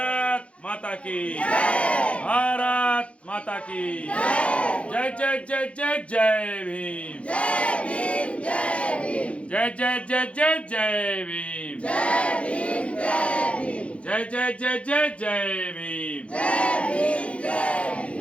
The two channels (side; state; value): right; late; 0.062 ms